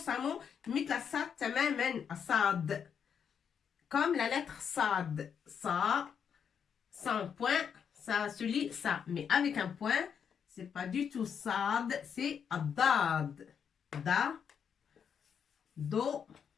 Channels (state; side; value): quieter; right; 7.4 dB